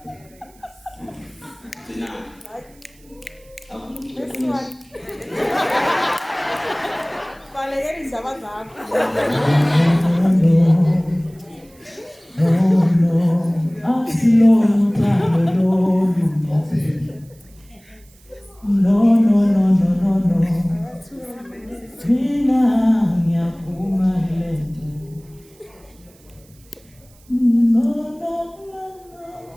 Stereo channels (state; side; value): noise; right; hiss, 29 dB below the sound